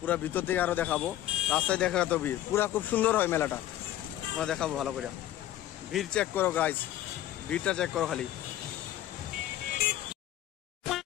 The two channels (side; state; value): right; quieter; 13.2 dB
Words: পুরা ভিতর থেকে আরো দেখাবো, রাস্তায় দেখা তো ভিড় পুরা খুব সুন্দর হয় মেলাটা, তোমরা দেখাবো ভালো করে। ভিড় চেক করো গাইস, ভিড়টা চেক করো খালি।